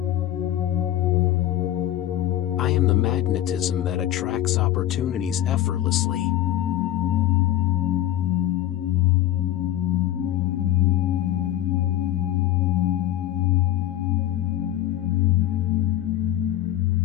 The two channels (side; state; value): right; quieter; 12.9 dB